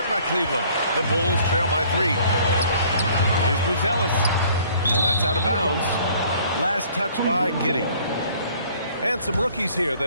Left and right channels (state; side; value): inverted; both; correlation -0.56